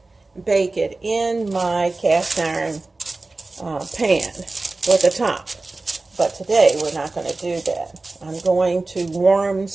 bake it in my cast iron pan with a top. But today, we're not going to do that. I'm going to warm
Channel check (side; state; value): left; quieter; 3.3 dB